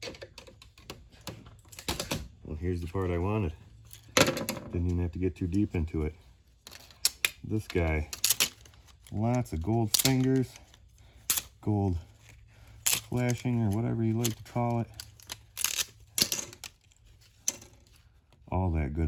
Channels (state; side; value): identical; both; correlation 1.00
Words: Well, here's the part I wanted. Didn't even have to get too deep into it. This guy, lots of gold fingers, gold flashing, or whatever you like to call it. All that